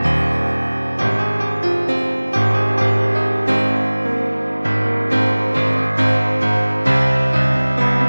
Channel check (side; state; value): both; inverted; correlation -1.00